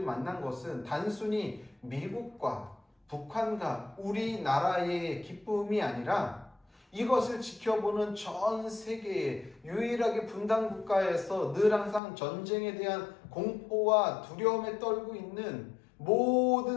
만난 것은 단순히 미국과 북한과 우리나라의 기쁨이 아니라 이것을 지켜보는 전 세계의 유일하게 분단 국가에서 늘 항상 전쟁에 대한 공포와 두려움에 떨고 있는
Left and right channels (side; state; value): right; drops out; at 12.0 s